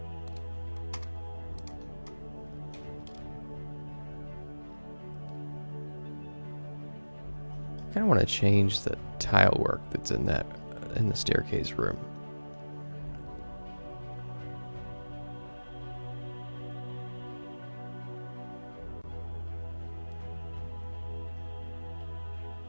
I kind of want to change the tile work that's in the staircase room.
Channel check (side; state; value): both; inverted; correlation -1.00